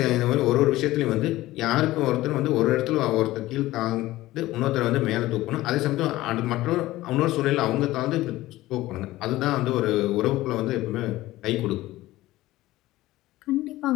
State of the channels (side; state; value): right; quieter; 17.0 dB